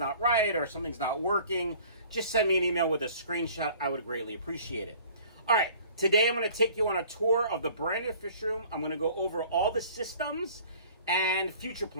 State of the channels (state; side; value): inverted; both; correlation -0.50